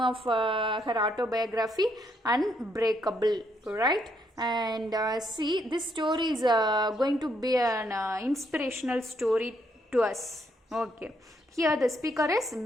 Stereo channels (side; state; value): both; normal; correlation 0.74